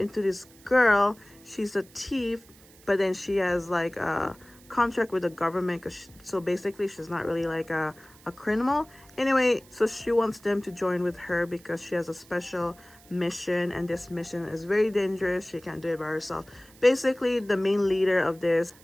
this girl. She's a thief, but then she has like a contract with the government. So basically she's not really like a criminal. Anyway, so she wants them to join with her because she has a special mission, and this mission is very dangerous. She can't do it by herself. Basically, the main leader of this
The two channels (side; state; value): right; noise; hiss, 25 dB below the sound